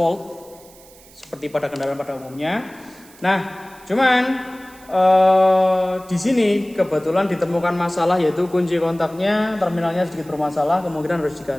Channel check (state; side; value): noise; right; hiss, 24 dB below the sound